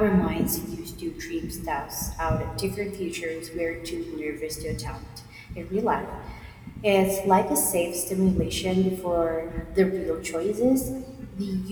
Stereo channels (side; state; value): both; identical; correlation 1.00